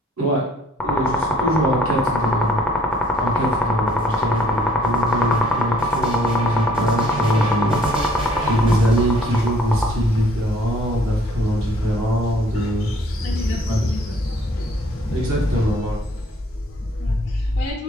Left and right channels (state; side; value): normal; both; correlation 0.60